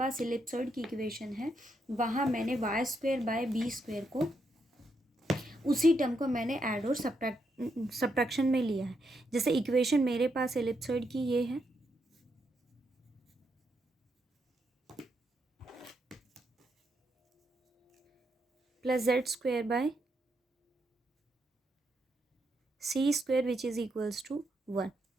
इलिप्सॉइड की इक्वेशन है वहाँ मैंने y²/b² को, उसी टर्म को मैंने ऐड और सब्ट्रैक्शन में लिया है। जैसे इक्वेशन मेरे पास इलिप्सॉइड की ये है, plus z² c square which is equals to 1।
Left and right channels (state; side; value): normal; both; correlation 0.80